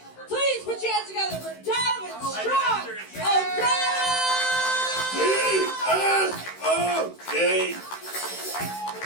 please put your hands together for Donovan Strong. D-S-O-D.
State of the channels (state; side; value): late; right; 16 ms